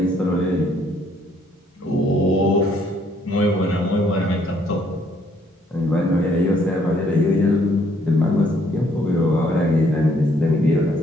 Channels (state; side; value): normal; both; correlation 0.67